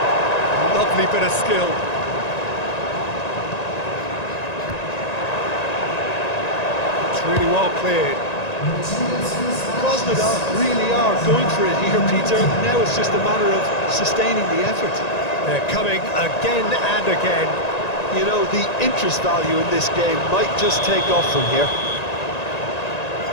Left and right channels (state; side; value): late; right; 1.9 ms